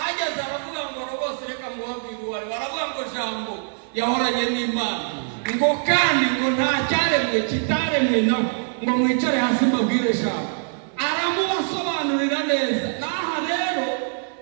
aravuga ngo logos, reka mubabwire uwari. Baravuga ngo jambo yahoranye n'Imana, ngo kandi ngo nta cyaremwe kitaremwe nawe, ngo mwicare hasi mbabwire jambo. Aramubasobanurira neza. Naha rero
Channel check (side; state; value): left; silent; 56 dB below the other